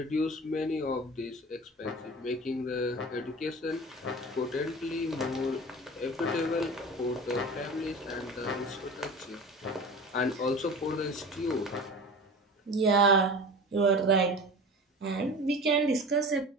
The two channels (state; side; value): normal; both; correlation 0.35